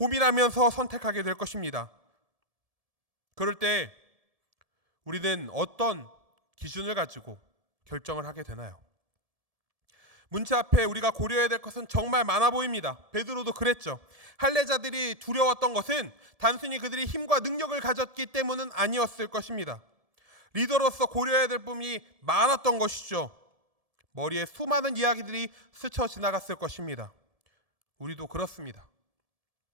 선택하게 될 것입니다. 그럴 때 우리는 어떤 기준을 가지고 결정을 하게 되나요? 문제 앞에 우리가 고려해야 될 것은 정말 많아 보입니다. 베드로도 그랬죠. 할례자들이 두려웠던 것은 단순히 그들이 힘과 능력을 가졌기 때문은 아니었을 것입니다. 리더로서 고려해야 될 부분이 많았던 것이죠. 머리에 수많은 이야기들이 스쳐 지나갔을 것입니다. 우리도 그렇습니다.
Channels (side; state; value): left; late; 1.7 ms